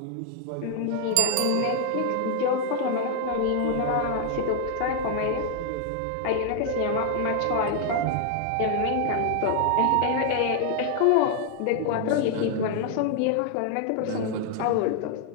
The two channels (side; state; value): both; different; correlation 0.00